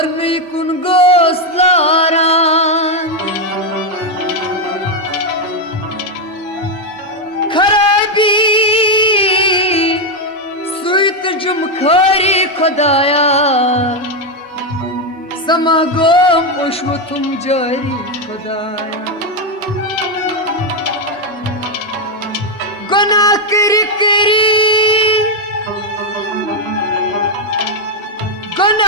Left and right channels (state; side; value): normal; both; correlation 0.04